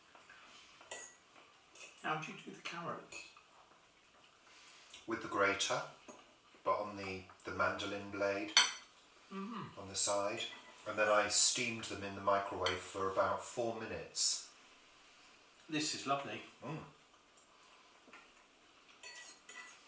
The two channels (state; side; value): identical; both; correlation 1.00